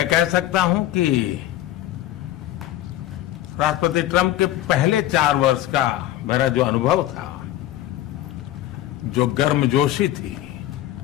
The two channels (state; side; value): quieter; right; 13.9 dB